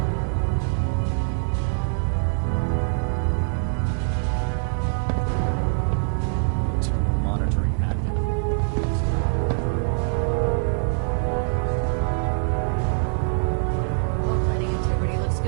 Internal monitoring active. Looks quiet. Hull plating integrity looks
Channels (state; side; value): silent; left; 63 dB below the other